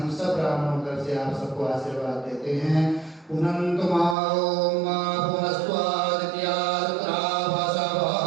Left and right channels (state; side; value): drops out; left; at 4.2 s